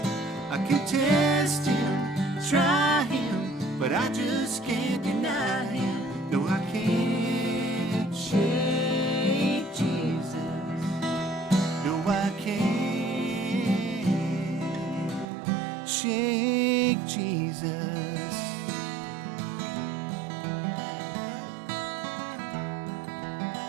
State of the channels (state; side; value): drops out; left; at 15.2 s